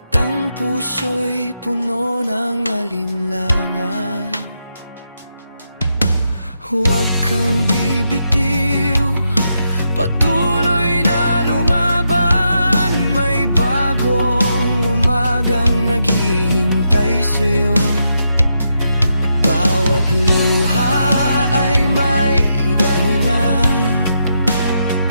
ang puso'y puno ng alinlangan. Huwag kang bibitiw, patuloy na lumaban. May bagong umagang naghihintay sa'yo. Bawat luha ay may dahilan,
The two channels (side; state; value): both; inverted; correlation -0.82